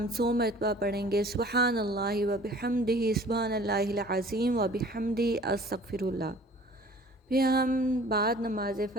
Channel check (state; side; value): normal; both; correlation 0.49